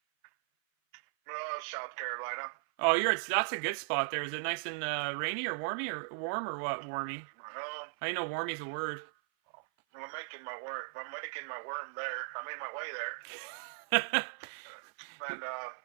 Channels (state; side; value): silent; left; 53 dB below the other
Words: South Carolina. Oh, that's a good spot there. Is it nice and rainy or warmy or warm or what? Warmy. I know warmy's a word. I'm making my worm there. I mean my way there. And